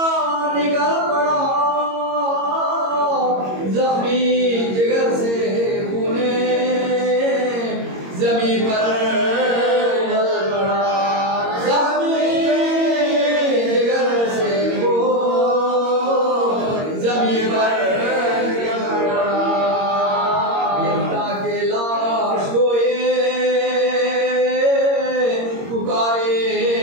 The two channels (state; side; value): late; left; 22 ms